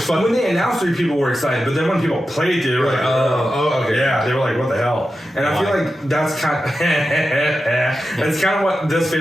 fun. When they announced 3, people were excited, but then when people played it, they were like, okay, yeah, they were like, what the hell? And I feel like that's kind of what this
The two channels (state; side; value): normal; both; correlation 0.91